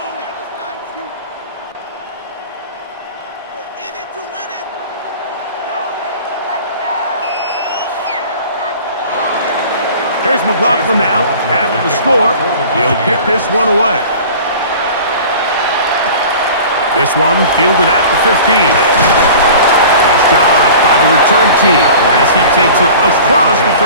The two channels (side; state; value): both; inverted; correlation -0.41